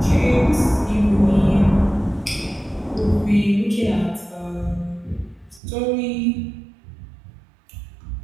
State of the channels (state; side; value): drops out; left; at 5.6 s